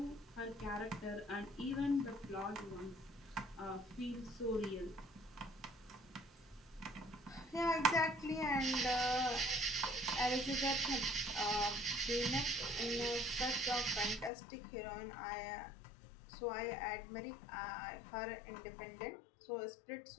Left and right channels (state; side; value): drops out; right; at 14.3 s